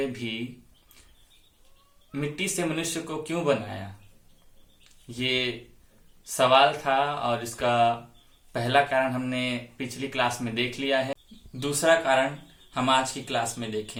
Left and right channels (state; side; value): identical; both; correlation 1.00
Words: भी मिट्टी से मनुष्य को क्यों बनाया। ये सवाल था और इसका पहला कारण हमने पिछली क्लास में देख लिया है। दूसरा कारण हम आज की क्लास में